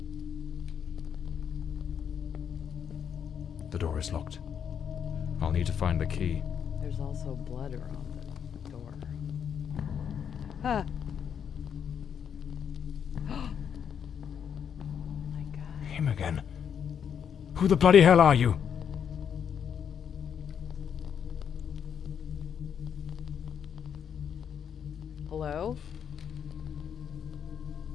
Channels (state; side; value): quieter; right; 7.9 dB